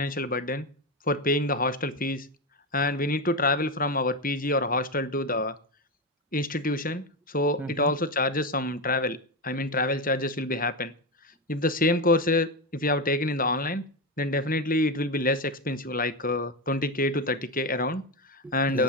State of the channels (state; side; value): normal; both; correlation 0.13